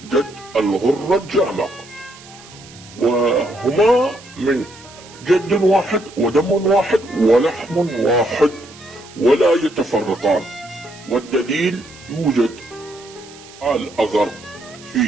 جد الغرة الجامع، وهما من جد واحد ودم واحد ولحم واحد ولا يتفرقان. والدليل يوجد الأغر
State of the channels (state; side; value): noise; right; hiss, 21 dB below the sound